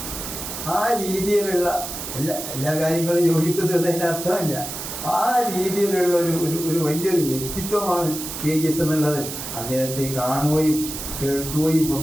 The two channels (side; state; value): right; noise; hiss, 7 dB below the sound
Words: ആ രീതിയിലുള്ള എല്ലാ കാര്യങ്ങളും യോജിക്കുന്നതിന് അർത്ഥമില്ല. ആ രീതിയിലുള്ള ഒരു വലിയൊരു വ്യക്തിത്വമാണ് KGS എന്നുള്ളത്. അദ്ദേഹത്തെ കാണുകയും കേൾക്കുകയും